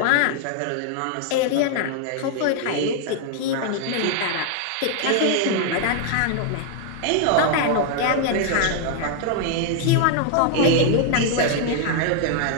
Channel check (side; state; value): both; different; correlation 0.00